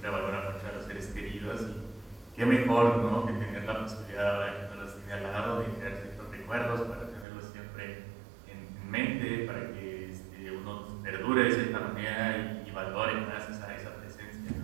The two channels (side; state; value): left; drops out; at 7.2 s